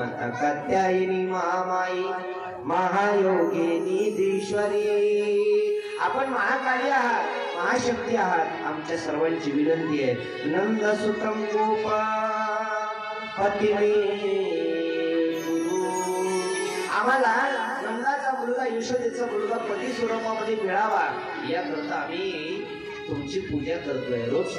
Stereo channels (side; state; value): both; identical; correlation 1.00